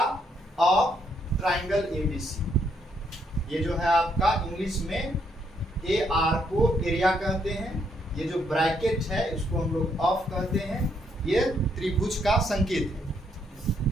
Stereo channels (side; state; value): both; normal; correlation 0.74